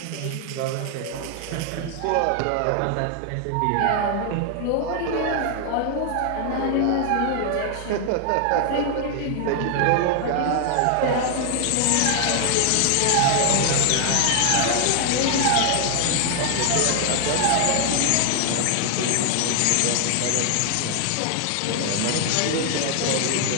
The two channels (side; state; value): both; different; correlation 0.00